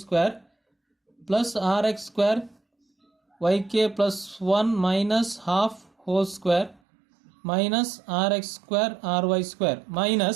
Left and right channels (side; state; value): left; drops out; at 6.8 s